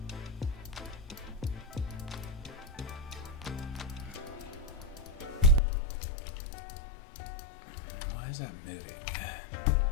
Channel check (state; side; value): drops out; right; at 5.6 s